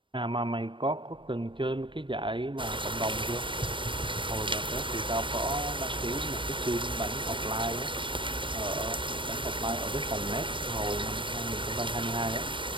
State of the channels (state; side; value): late; left; 0.24 ms